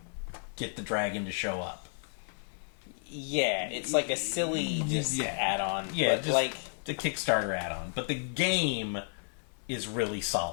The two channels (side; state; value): right; silent; 56 dB below the other